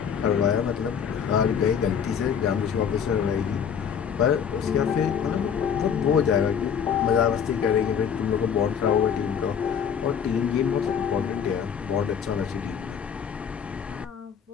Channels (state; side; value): quieter; right; 7.5 dB